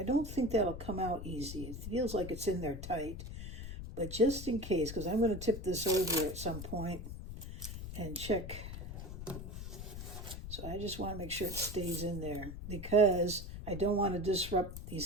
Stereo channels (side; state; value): left; noise; rumble, 8 dB below the sound